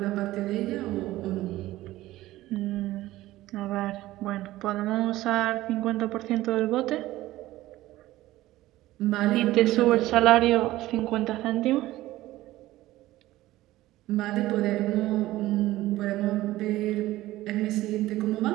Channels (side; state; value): left; quieter; 16.4 dB